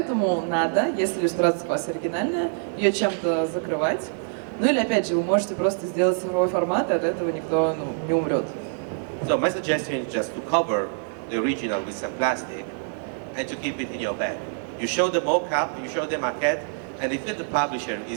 надо, если иллюстрация у вас оригинальная, ее чем-то закрывать. Ну или, опять же, вы можете просто сделать цифровой формат, и от этого никто не умрет. So my suggestion is just to cover the original with some plastic and to keep it in your bag. You show the mock-up, you show the maquette, and if the publisher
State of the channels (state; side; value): silent; left; digital silence